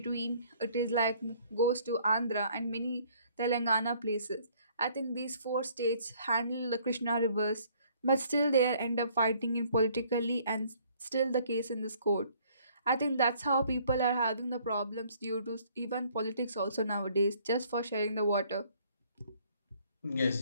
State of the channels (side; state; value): both; inverted; correlation -0.60